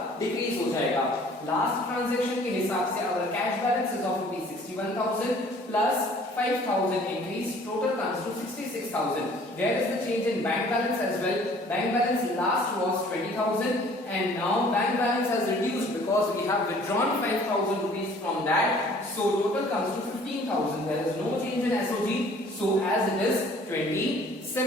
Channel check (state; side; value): normal; both; correlation 0.54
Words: डिक्रीज हो जाएगा. लास्ट ट्रांजैक्शन के हिसाब से अगर cash balance is of 61,000 plus 5,000 increase, total comes to 66,000. There is the change in bank balance as well. Bank balance last was 20,000 and now bank balance has reduced because we have withdrawn 5,000 rupees from that, so total comes to 15,000. there is no change in SOG, so as it is